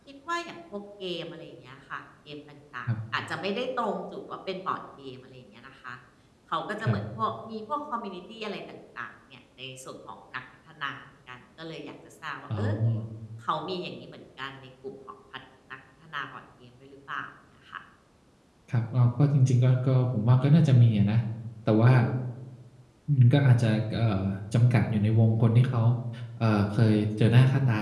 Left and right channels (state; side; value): identical; both; correlation 1.00